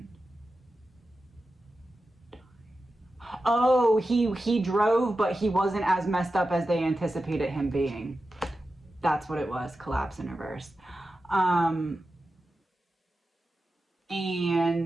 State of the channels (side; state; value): both; normal; correlation 0.92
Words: Oh, he drove, but he wasn't as messed up as they anticipated him being. That's what it was. Collapse in reverse. And